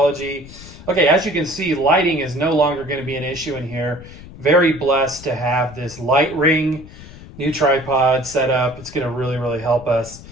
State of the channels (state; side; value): noise; left; rumble, 17 dB below the sound